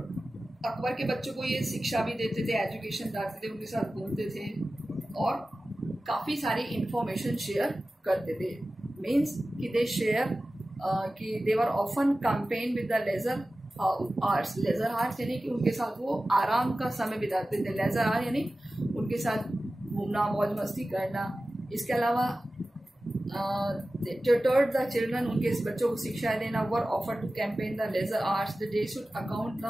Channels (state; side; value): normal; both; correlation 0.95